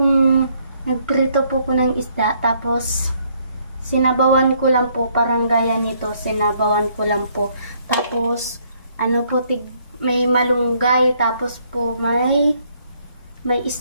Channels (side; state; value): both; inverted; correlation -0.68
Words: nagprito po ko ng isda. Tapos, sinabawan ko lang po. Parang gaya nito. Sinabawan ko lang po. Tapos, may malunggay, tapos po may